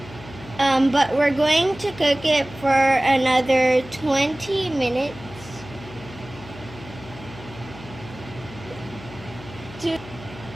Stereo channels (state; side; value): noise; left; hum, 16 dB below the sound